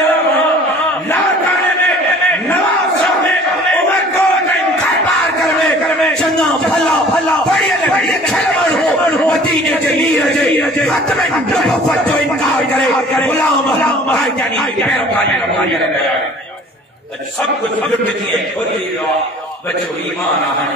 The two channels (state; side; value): normal; both; correlation 0.49